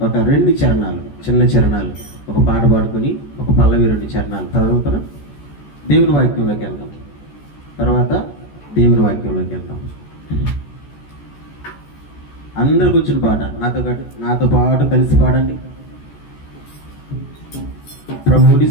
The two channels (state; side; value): late; right; 14 ms